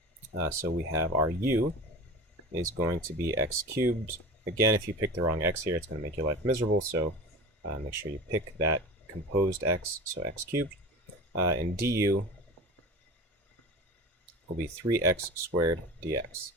So we have our u is going to be x cubed. Again, if you pick the wrong x here, it's going to make your life miserable, so make sure you pick that composed x, so x cubed. And du will be 3x squared dx.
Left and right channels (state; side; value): normal; both; correlation 0.33